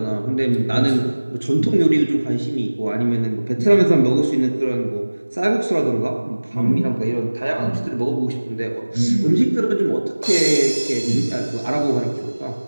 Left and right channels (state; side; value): inverted; both; correlation -1.00